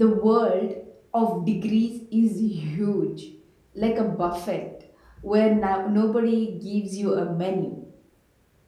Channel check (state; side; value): identical; both; correlation 1.00